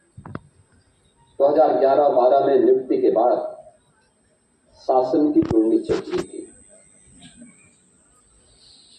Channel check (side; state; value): both; identical; correlation 1.00